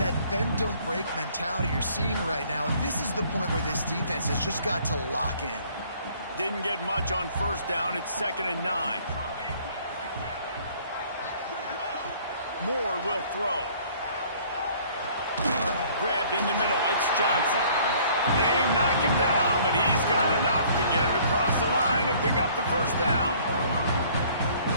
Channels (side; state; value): both; inverted; correlation -0.57